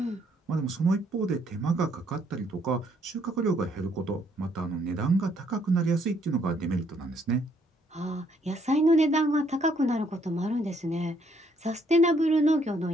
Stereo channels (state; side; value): normal; both; correlation 0.68